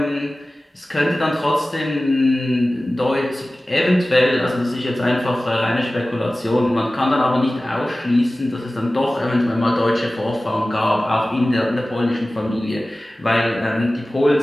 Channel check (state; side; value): normal; both; correlation 0.97